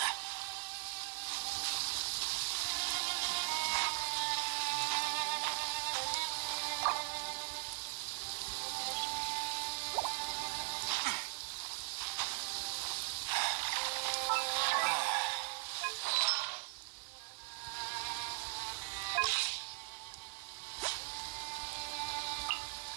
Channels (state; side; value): silent; left; 52 dB below the other